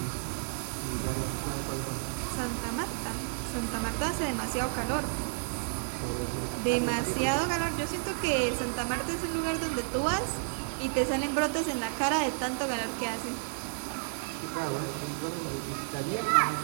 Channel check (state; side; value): silent; left; digital silence